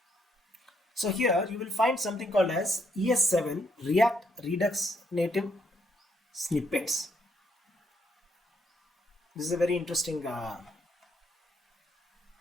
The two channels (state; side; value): normal; both; correlation 0.73